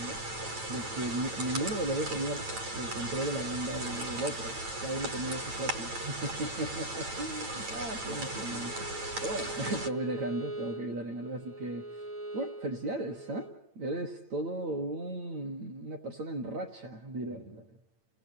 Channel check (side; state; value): left; late; 8.9 ms